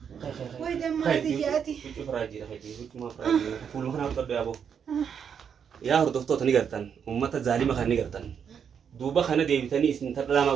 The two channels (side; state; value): left; quieter; 7.4 dB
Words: وين دم ما تجاتي فراجي ما فراجي فول مخنا قد يا ابو يا هردفتو تني غرتن امته ظالمه خني غرتن دوبا خنا ديبتني اسن تدلاما